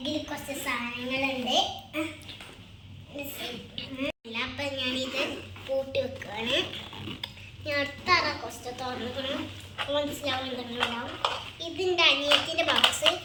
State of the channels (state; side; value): identical; both; correlation 1.00